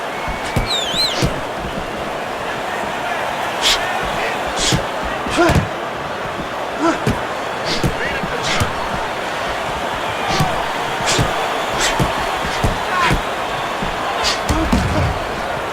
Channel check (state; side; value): identical; both; correlation 1.00